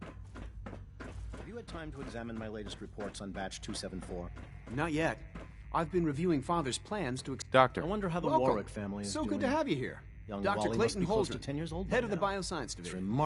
Have you had time to examine my latest reports on batch 274? Not yet. I've been reviewing Father's plans to... Doctor. I wonder how the Welcome. Warwick family is doing. So good to have you here. Young Dr. Wally must Clayton be close to Holdren, 10 years old by head of the now. Bioscience It's Division.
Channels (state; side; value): identical; both; correlation 1.00